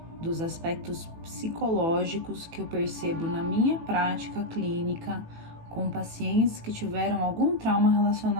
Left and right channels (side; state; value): left; late; 18 ms